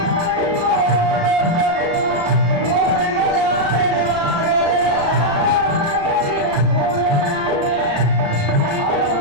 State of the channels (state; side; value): late; left; 35 ms